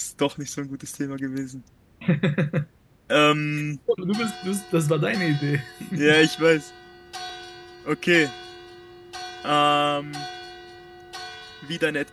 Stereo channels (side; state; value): both; identical; correlation 1.00